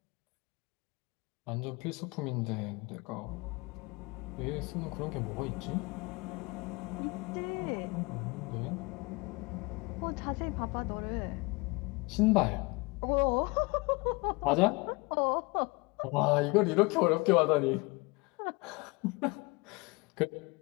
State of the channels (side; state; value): right; quieter; 26.6 dB